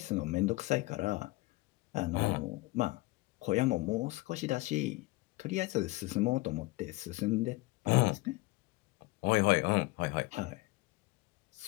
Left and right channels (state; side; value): quieter; right; 22.0 dB